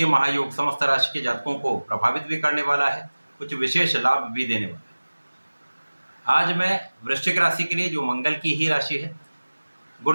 महायोग समस्त राशि के जातकों को प्रभावित भी करने वाला है, कुछ विशेष लाभ भी देने वाला है। आज मैं वृश्चिक राशि के लिए, जो मंगल की ही राशि है,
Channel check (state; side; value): inverted; both; correlation -1.00